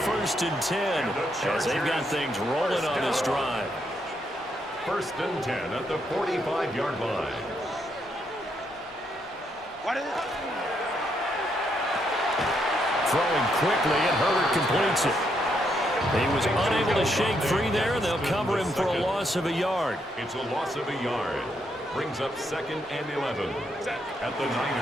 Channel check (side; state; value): both; normal; correlation 0.76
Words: and 10, as they've got things rolling on this drive. 1st and 10 at the 45-yard line. Throwing quickly, and Herbert completes it. He was unable to shake free there, and they'll cover him for a loss of a yard. It's a loss of a yard. Brings up 2nd and 11 at the